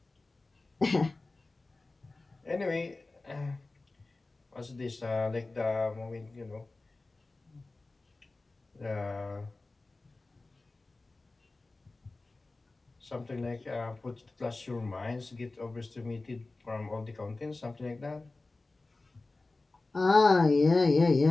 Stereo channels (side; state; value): right; quieter; 3.3 dB